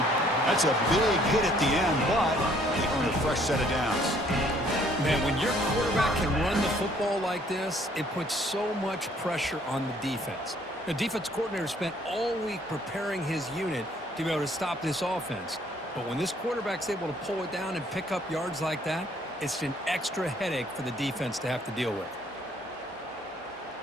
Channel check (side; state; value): both; normal; correlation 0.62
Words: That's a big hit at the end, but they earn a fresh set of downs. Man, when your quarterback can run the football like this, it puts so much pressure on the defense. The defense coordinator spent all week preparing his unit to be able to stop this offense. But when this quarterback's able to pull it down and pick up yards like that, it's an extra headache for the defense to have to deal with.